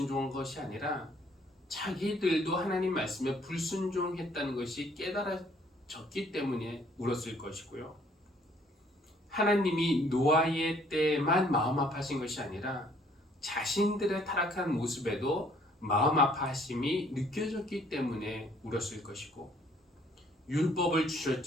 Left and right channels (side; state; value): both; normal; correlation 0.61